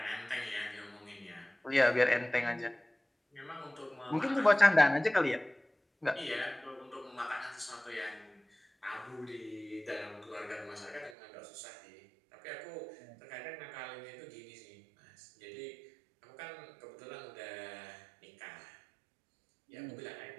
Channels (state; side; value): drops out; left; at 11.2 s